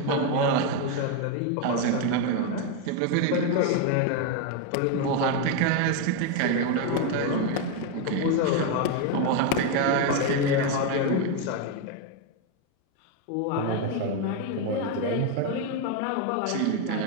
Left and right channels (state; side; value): different; both; correlation 0.02